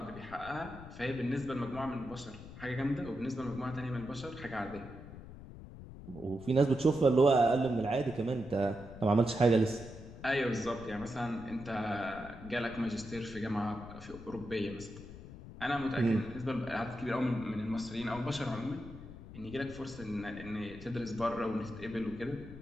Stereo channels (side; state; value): left; noise; rumble, 14 dB below the sound